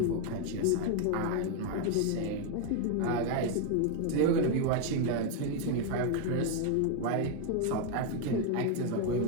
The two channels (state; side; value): different; both; correlation 0.01